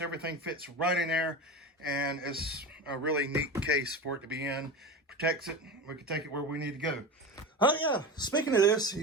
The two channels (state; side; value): normal; both; correlation 0.26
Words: fits right in there, and it's a really neat case for it to be in. Protects it. We can take it where we need to go. Oh yeah, speaking of this,